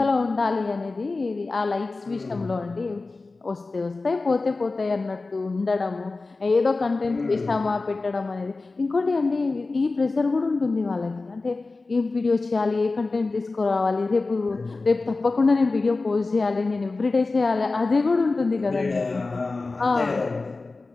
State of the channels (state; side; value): quieter; right; 3.6 dB